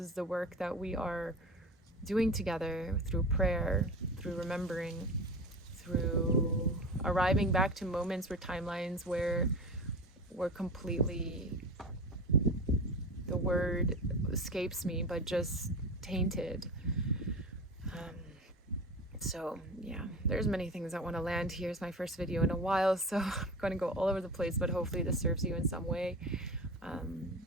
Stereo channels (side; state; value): both; normal; correlation 0.30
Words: the work that we are doing together through prayer, through remembering, through arriving back to moments where timelines where we're completely, the word escapes me, but just tainted. So yeah, there's many things I want to land here. It's my first video in a while, so I'm going to go all over the place, but hopefully this serves you in some way.